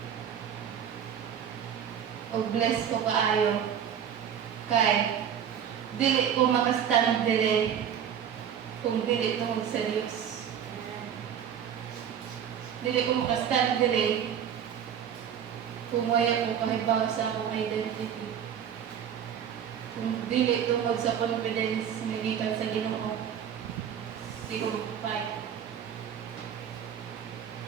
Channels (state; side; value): quieter; left; 8.7 dB